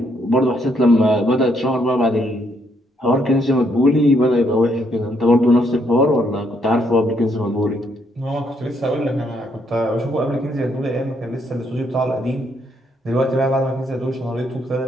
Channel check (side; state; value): both; normal; correlation 0.72